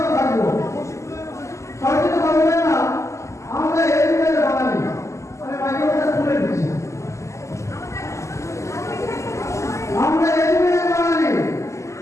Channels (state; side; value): late; right; 0.14 ms